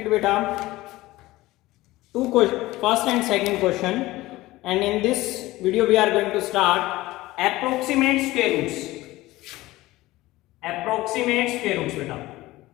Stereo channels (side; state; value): right; quieter; 18.3 dB